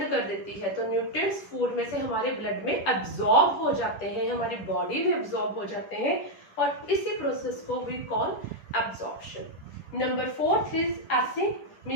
कर देती है। तो न्यूट्रिएंट्स फूड में से हमारे ब्लड में एब्जॉर्ब हो जाते हैं, हमारी बॉडी में एब्जॉर्ब हो जाते हैं, और इसी प्रोसेस को we call absorption. Number 4 is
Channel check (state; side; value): late; right; 10 ms